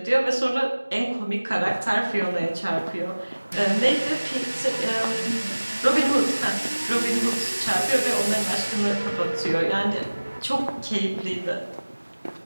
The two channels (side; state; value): both; inverted; correlation -1.00